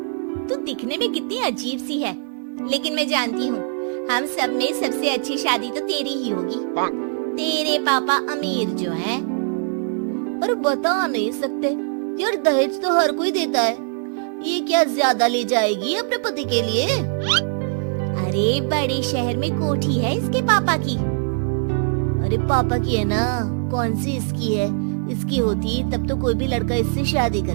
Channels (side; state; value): left; silent; 60 dB below the other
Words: तू दिखने में कितनी अजीब सी है, लेकिन मैं जानती हूँ हम सब में सबसे अच्छी शादी तो तेरी ही होगी। तेरे पापा अमीर जो हैं। और बता नहीं सकते यार, दहेज तो हर कोई देता है, ये क्या ज्यादा ले जाएगी अपने पति के लिए? अरे बड़े शहर में कोठी है इसके पापा की। अरे पापा की है ना, कौन सी इसकी है? इसकी होती तब तो कोई भी लड़का इससे शादी कर